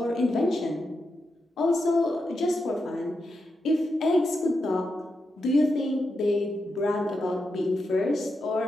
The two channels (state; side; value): normal; both; correlation 0.86